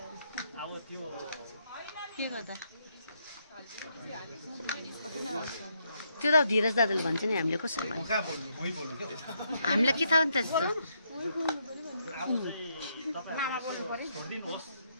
त्यो त धीरज दादाले भन्छ नि हामीले कसरी भन्छ हामीलाई के थाहा नि त त्यस्तो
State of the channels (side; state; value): both; inverted; correlation -0.76